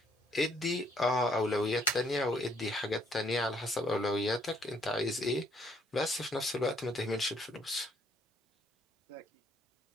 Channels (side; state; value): both; normal; correlation 0.67